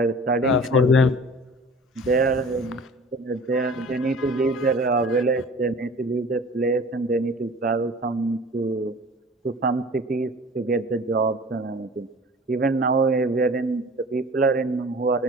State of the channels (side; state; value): both; normal; correlation 0.43